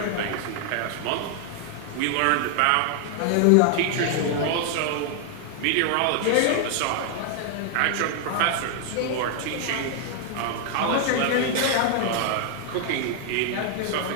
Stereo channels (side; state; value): both; different; correlation 0.00